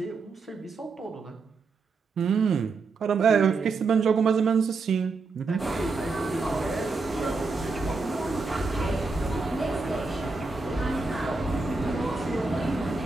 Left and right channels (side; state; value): left; quieter; 4.1 dB